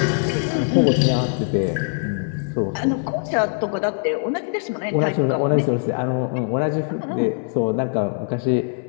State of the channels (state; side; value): silent; right; 60 dB below the other